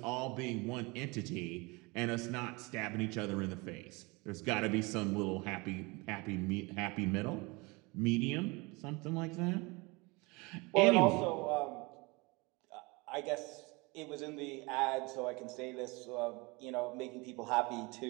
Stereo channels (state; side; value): quieter; left; 25.9 dB